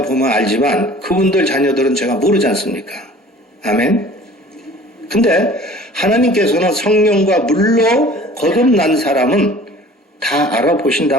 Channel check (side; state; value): both; normal; correlation 0.47